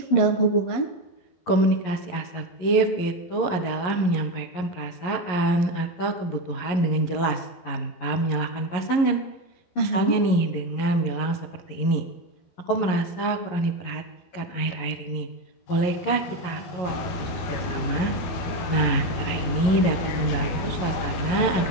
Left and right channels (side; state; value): right; late; 11 ms